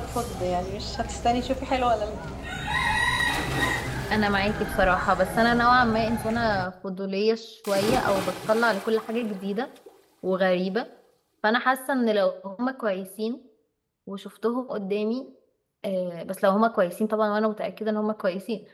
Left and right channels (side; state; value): both; identical; correlation 1.00